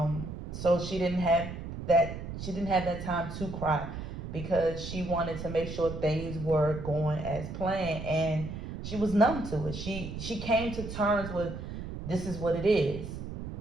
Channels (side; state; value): right; noise; rumble, 8 dB below the sound